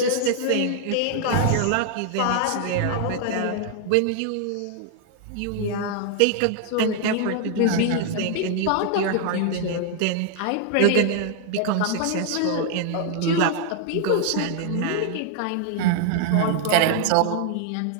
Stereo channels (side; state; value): both; different; correlation 0.00